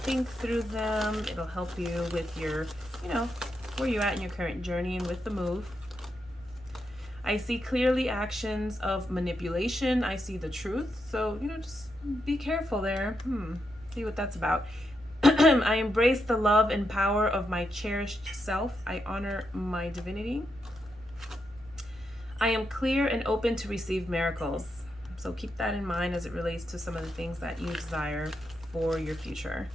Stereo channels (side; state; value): right; noise; hum, 24 dB below the sound